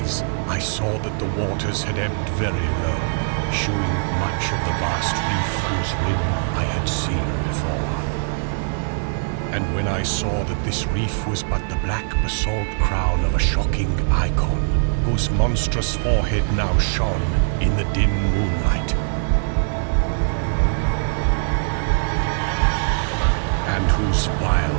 I saw that the waters had ebbed very low, shewing much of the vast reef whose rim I had seen before. And when I saw that this reef was but the black basalt crown of a shocking icon, whose monstrous forehead now shone in the dim moonlight, and whose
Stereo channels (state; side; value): silent; left; digital silence